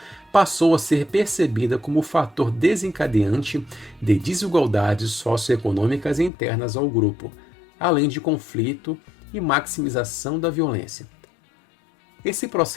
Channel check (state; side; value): drops out; right; at 6.3 s